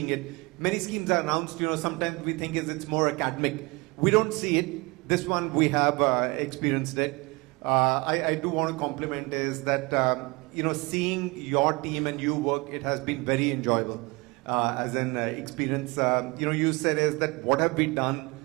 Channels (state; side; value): quieter; left; 26.1 dB